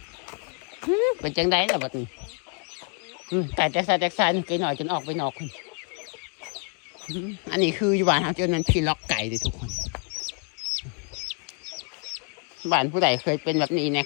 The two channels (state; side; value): quieter; right; 37.4 dB